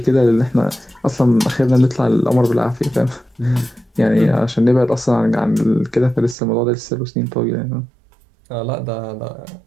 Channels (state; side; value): drops out; left; at 6.4 s